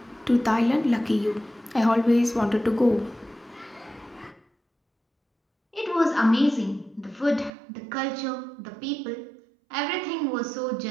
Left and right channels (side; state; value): left; drops out; at 7.5 s